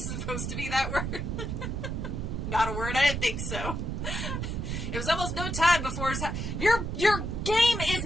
supposed to be that word. Not a word. I didn't think so. It was almost no time before your game is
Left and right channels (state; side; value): noise; right; rumble, 3 dB below the sound